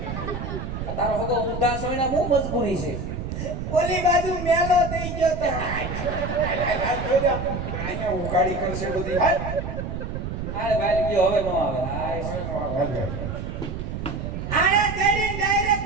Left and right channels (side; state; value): right; noise; rumble, 5 dB below the sound